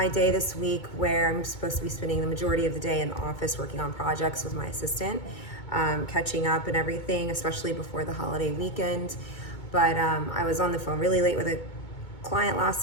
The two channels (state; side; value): late; right; 2.2 ms